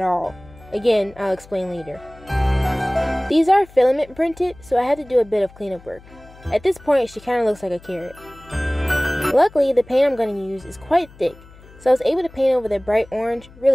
all. Again, I'll explain later. These are filament printed, so I had to do a bit of cleanup work. At this point, she kind of looks like a carrot. Luckily, the paint I'm going to use is quite thick, so I was able to paint over the bright orange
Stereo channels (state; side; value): noise; left; hum, 23 dB below the sound